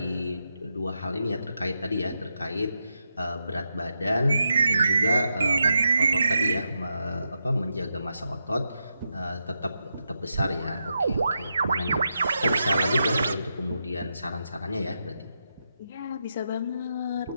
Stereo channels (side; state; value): both; inverted; correlation -0.85